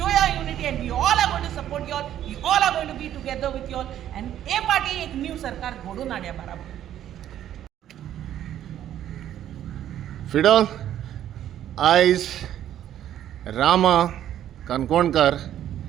your unity and we all are going to support you all, we all are going to be together with you all and a party एक new सरकार घडून हाडया बाराबर. फिडो आयज Rama Kankonkar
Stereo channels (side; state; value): left; quieter; 11.3 dB